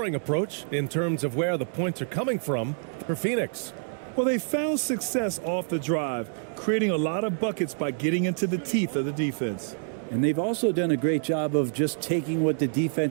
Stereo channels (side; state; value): left; silent; digital silence